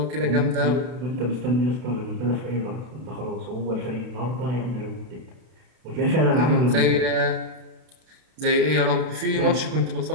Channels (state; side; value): late; left; 32 ms